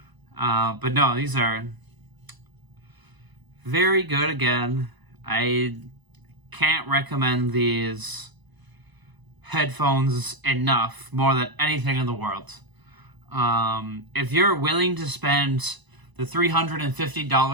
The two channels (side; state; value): left; late; 1.0 ms